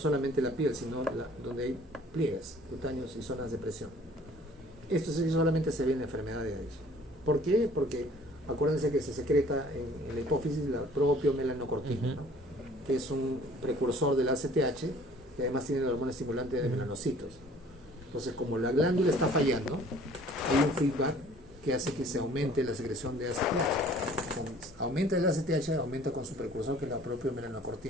la piel, sino donde hay pliegues cutáneos y zonas de presión. Esto sí solamente se ve en la enfermedad de Addison. ¿Por qué? Porque acuérdense que se secreta en la hipófisis la propio melanocortina, ¿no? Que es un precursor del ACTH, que además tiene la hormona estimulante de melanocitos. Entonces, como la glándula está fallando, hay un feedback que hace que se aumente la secreción de ACTH. Aumenta el ACTH, aumenta con su precursor, que es la propia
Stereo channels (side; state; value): both; normal; correlation 0.53